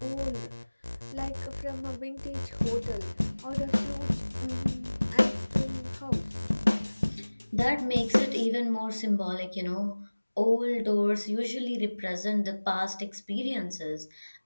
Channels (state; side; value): inverted; both; correlation -1.00